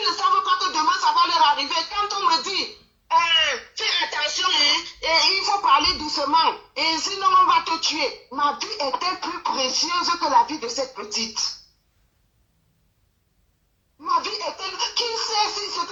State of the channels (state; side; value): identical; both; correlation 1.00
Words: ne savent pas que demain ça va leur arriver. Quand on me dit, fais attention, hein, et il faut parler doucement, et sinon on va te tuer. Ma vie était plus précieuse que la vie de cette petite. Ma vie était... Qui sait si ce